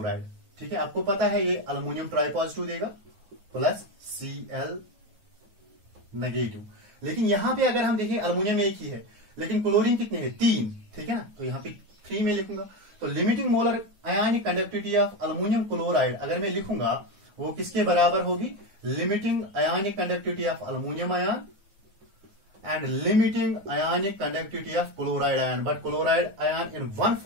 ठीक है, आपको पता है ये अल्युमिनियम ट्राइपॉजिटिव देगा प्लस Cl नेगेटिव. लेकिन यहां पे अगर हम देखें अल्युमिनियम एक ही है, लेकिन क्लोरीन कितने हैं? 3. ठीक है ना? तो यहां पे 3 में लिखूंगा. तो limiting molar ionic conductivity of aluminium chloride अगर मैं लिखूंगा वो किसके बराबर होगी? Limiting ionic conductivity of aluminium ion and limiting ionic conductivity of chloride ion. But chloride ion in one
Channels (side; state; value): left; late; 9.4 ms